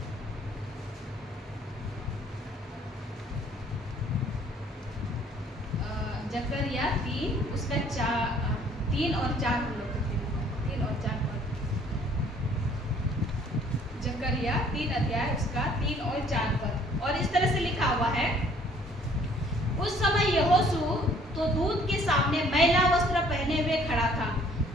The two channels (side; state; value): both; normal; correlation 0.58